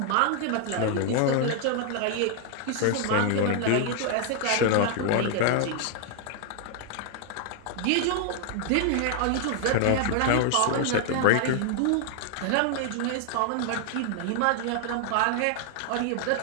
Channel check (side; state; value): both; different; correlation 0.00